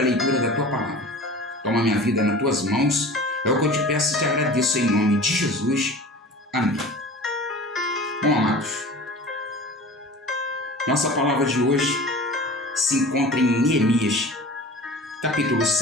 a leitura da Tua palavra. Toma minha vida nas Tuas mãos, é o que eu te peço e te agradeço em nome de Jesus. Amém. Bom, amados, nossa palavra de hoje se encontra em Neemias, capítulo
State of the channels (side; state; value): both; normal; correlation 0.39